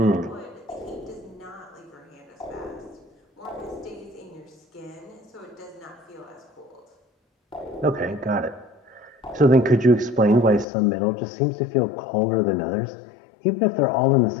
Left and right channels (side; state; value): right; drops out; at 10.7 s